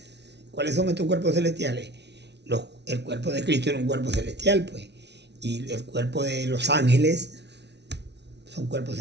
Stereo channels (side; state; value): left; late; 0.50 ms